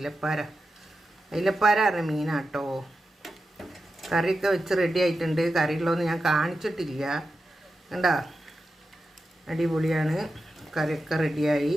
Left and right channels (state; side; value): normal; both; correlation 0.91